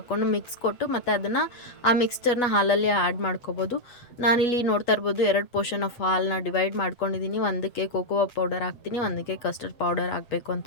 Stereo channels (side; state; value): right; late; 8.2 ms